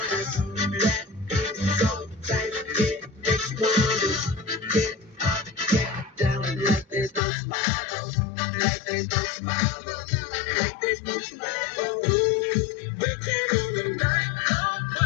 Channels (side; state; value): right; drops out; at 7.2 s